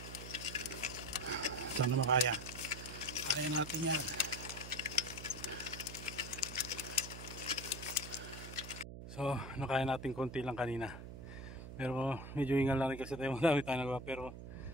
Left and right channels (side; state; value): right; noise; hum, 11 dB below the sound